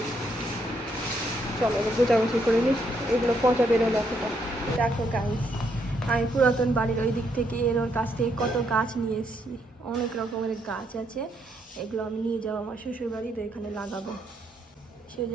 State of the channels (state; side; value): normal; both; correlation 0.75